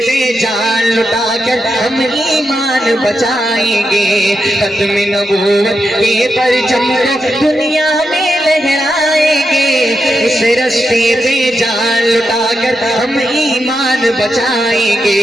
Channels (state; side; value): normal; both; correlation 0.86